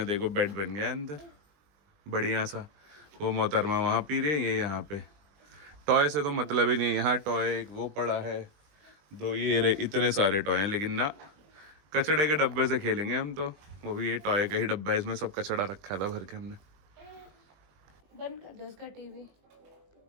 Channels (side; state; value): left; late; 20 ms